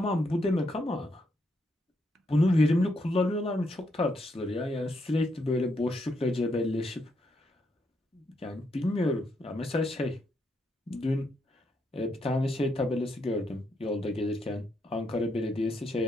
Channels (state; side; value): normal; both; correlation 0.78